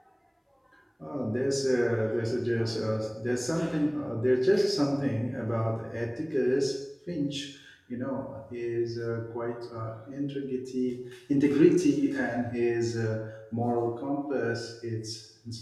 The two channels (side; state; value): both; identical; correlation 1.00